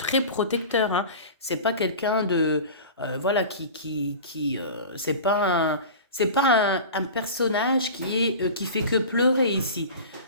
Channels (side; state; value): both; inverted; correlation -0.34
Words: protecteur. Hein. C'est pas quelqu'un de... voilà, c'est pas un... C'est pas un personnage qui fait que pleurer ici.